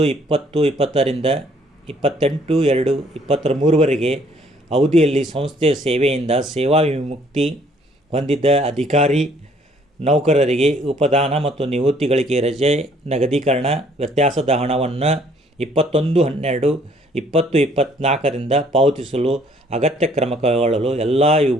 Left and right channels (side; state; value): both; normal; correlation 0.62